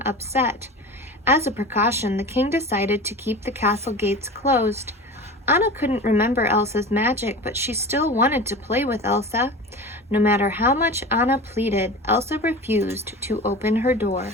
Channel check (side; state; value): both; normal; correlation 0.33